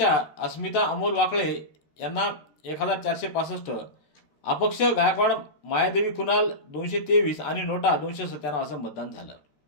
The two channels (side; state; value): right; late; 13 ms